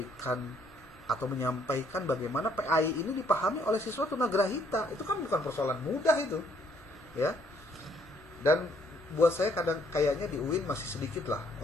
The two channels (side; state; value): both; normal; correlation 0.67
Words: atau menyampaikan bagaimana PAI ini dipahami oleh siswa tunagrahita. Itu kan bukan persoalan mudah itu. Ya. Dan buat saya kadang kayaknya di UIN masih sedikit lah